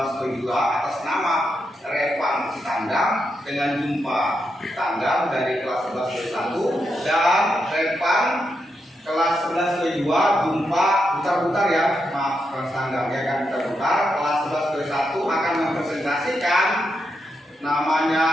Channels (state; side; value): normal; both; correlation 0.84